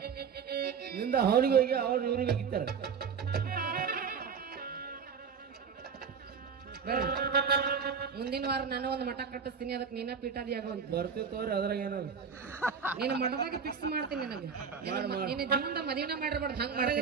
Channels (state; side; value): quieter; left; 6.1 dB